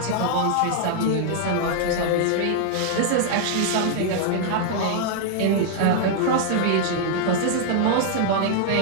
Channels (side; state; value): both; different; correlation -0.01